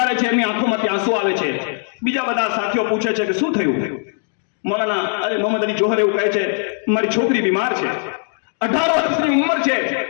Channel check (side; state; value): right; silent; 65 dB below the other